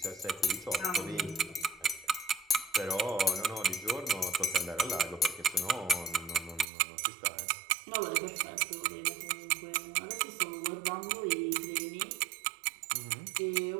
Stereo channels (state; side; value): drops out; left; at 6.7 s